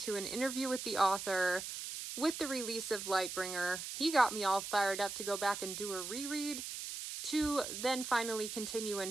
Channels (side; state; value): right; noise; hiss, 6 dB below the sound